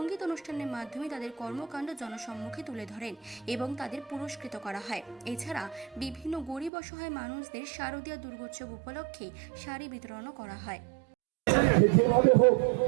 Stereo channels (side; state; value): left; drops out; at 6.7 s